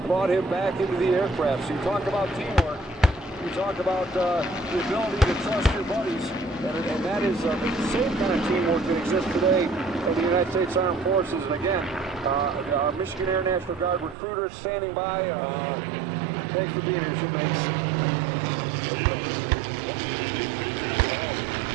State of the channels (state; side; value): drops out; left; at 14.2 s